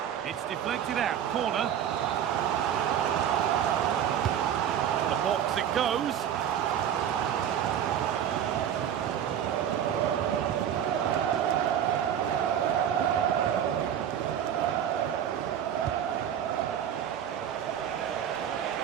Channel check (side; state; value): left; quieter; 9.6 dB